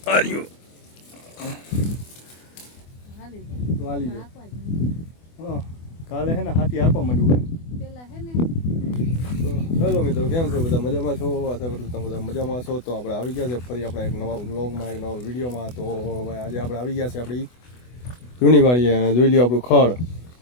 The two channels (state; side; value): late; right; 24 ms